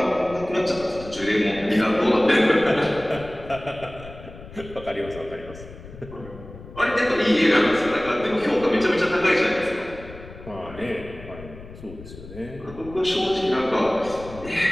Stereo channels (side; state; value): left; noise; rumble, 16 dB below the sound